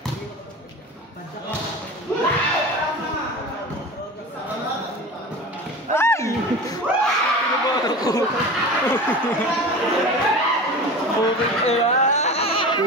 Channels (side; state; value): both; normal; correlation 0.33